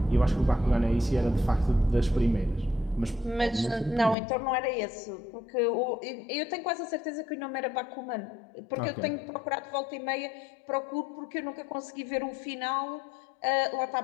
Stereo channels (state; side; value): drops out; right; at 4.2 s